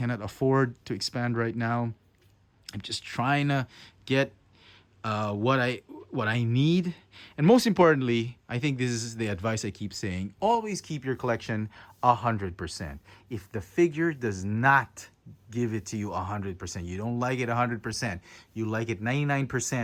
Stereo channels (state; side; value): identical; both; correlation 1.00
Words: afford to expand right now. I'm just trying to get what I need. And most importantly, I think this is the advice I keep saying. Always keep your collection 100%. If the figure does not give it to you 100%, you don't like it 100%, you like it